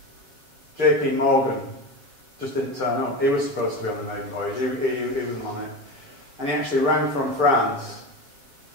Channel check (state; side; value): late; left; 7.3 ms